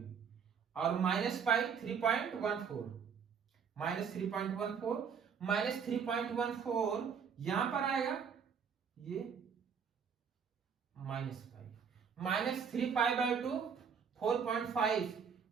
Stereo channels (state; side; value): quieter; left; 6.8 dB